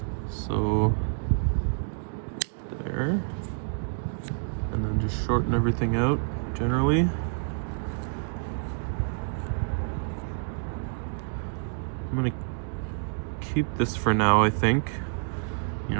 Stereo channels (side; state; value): left; silent; digital silence